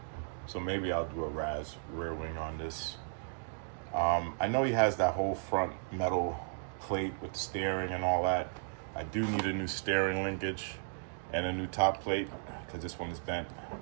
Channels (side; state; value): left; silent; digital silence